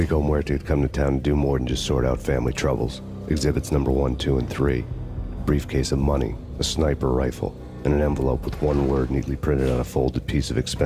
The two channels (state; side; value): identical; both; correlation 1.00